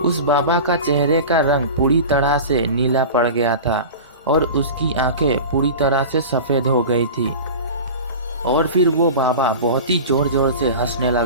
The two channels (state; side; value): inverted; both; correlation -0.32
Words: उस बाबा का चेहरे का रंग पूरी तरह से नीला पड़ गया था और उसकी आंखें पूरी तरह से सफ़ेद हो गई थी। और फिर वो बाबा बहुत ही जोर जोर से हंसने